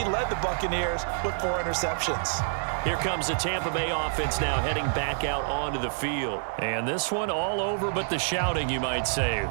led the Buccaneers with 4 interceptions. Here comes the Tampa Bay offense now heading back out onto the field. And this one all over but the shouting, you might say.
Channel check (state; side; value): silent; left; digital silence